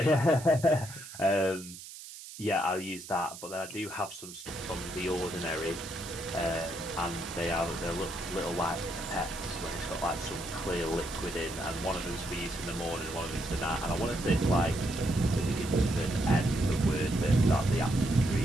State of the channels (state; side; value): noise; right; hiss, 14 dB below the sound